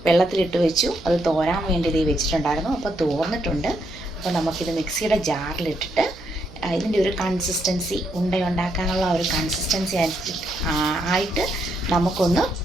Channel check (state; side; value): noise; right; hum, 21 dB below the sound